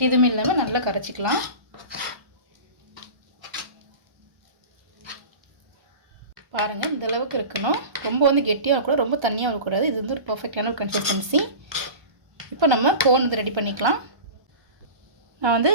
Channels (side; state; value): left; late; 1.3 ms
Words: எதுவுமே இல்லாமல் நல்லா கரைச்சிக்கலாம். பாருங்கள் இந்த அளவுக்கு இருக்கணும். ரொம்ப வந்து கெட்டியாக இருக்கக்கூடாது, ரொம்ப தண்ணியாக இருக்கக்கூடாது. இது வந்து ஒரு பர்ஃபெக்டான ஒரு கன்சிஸ்டன்சி. இப்போ நம்ம கோன் வந்து ரெடி பண்ணிக்கலாம். நான் வந்து